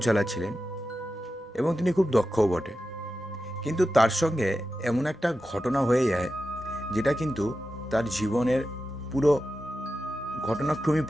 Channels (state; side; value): normal; both; correlation 0.91